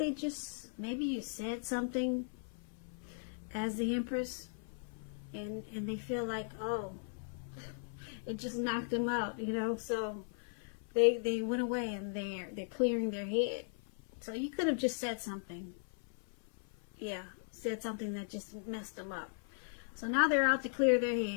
you said something as the Empress, and they feel like, oh, it just knocked them out, you know. So they went away, and they're clearing their head. So you could have just said something. Yeah, said something that just messed them up. So now they're out to clear their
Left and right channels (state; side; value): silent; right; 53 dB below the other